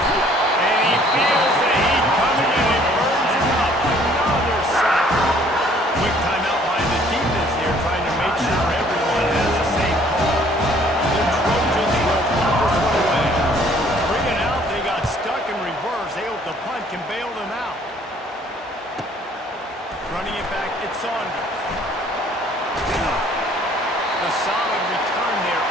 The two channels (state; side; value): normal; both; correlation 0.58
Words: And he feels the heat coming, and it burns him up. Another sack. Quick timeout by the defense here, trying to make sure everyone has the same call. The Trojans will punt this one away. 3 and out, they got stuck in reverse. They hope the punt can bail them out. Running it back, it's Saunders. The solid return there